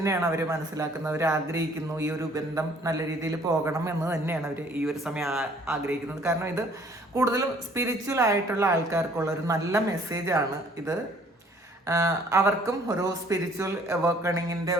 അവർ മനസ്സിലാക്കുന്നത്. അവർ ആഗ്രഹിക്കുന്നു ഈ ഒരു ബന്ധം നല്ല രീതിയിൽ പോകണം എന്ന് തന്നെയാണ് അവർ ഈ ഒരു സമയം ആഗ്രഹിക്കുന്നത്. കാരണം ഇത് കൂടുതലും സ്പിരിച്വൽ ആയിട്ടുള്ള ആൾക്കാർക്കുള്ള ഒരു നല്ല മെസ്സേജാണ് ഇത്. അവർക്കും ഒരു സ്പിരിച്വൽ അവേക്കണിങ്ങിൻ്റെ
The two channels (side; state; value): both; normal; correlation 0.58